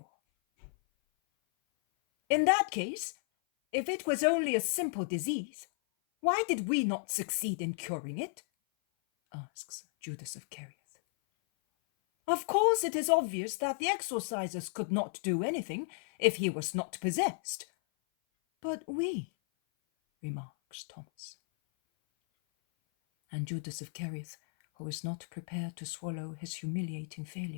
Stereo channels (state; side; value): silent; right; 55 dB below the other